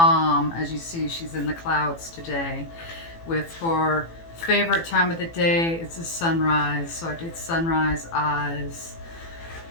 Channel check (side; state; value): right; late; 18 ms